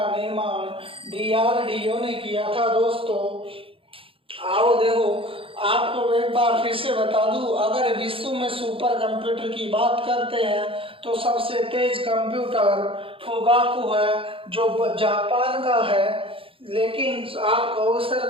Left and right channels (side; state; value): left; late; 0.26 ms